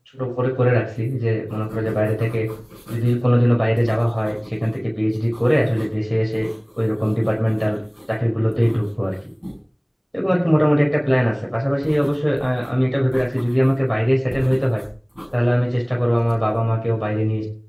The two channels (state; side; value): identical; both; correlation 1.00